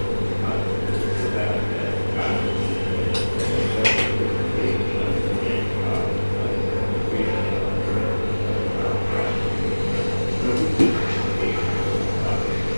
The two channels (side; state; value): both; inverted; correlation -1.00